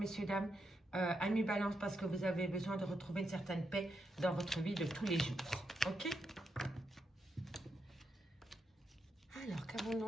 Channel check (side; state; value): both; normal; correlation 0.83